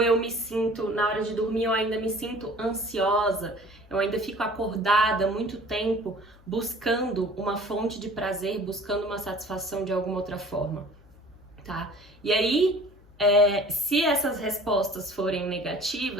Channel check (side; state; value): left; noise; hum, 26 dB below the sound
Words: me sinto, na hora de dormir, eu ainda me sinto ansiosa, eu ainda fico acordada muito tempo buscando uma fonte de prazer, buscando uma satisfação de alguma outra forma. Tá? E aí, se essas respostas forem